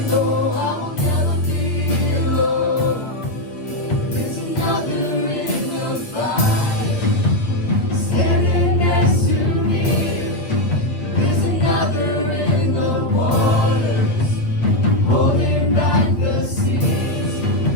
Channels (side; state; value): right; late; 8.4 ms